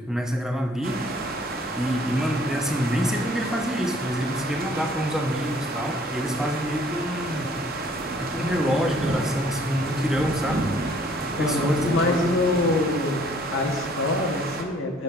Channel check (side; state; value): both; normal; correlation 0.58